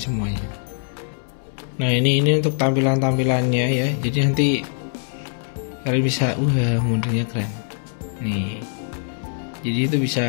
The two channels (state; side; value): silent; right; 64 dB below the other